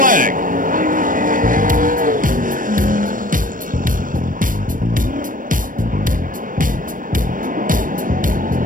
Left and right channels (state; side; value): late; left; 0.40 ms